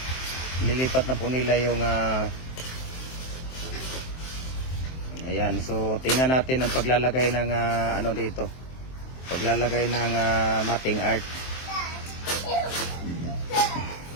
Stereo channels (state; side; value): late; right; 23 ms